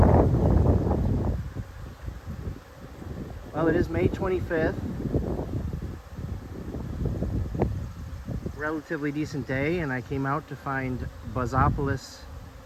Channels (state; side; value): identical; both; correlation 1.00